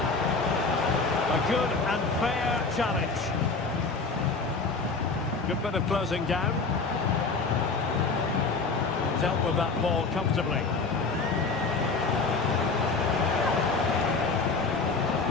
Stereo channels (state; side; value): quieter; right; 4.1 dB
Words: A good and fair challenge. Good bit of closing down. Dealt with that ball comfortably.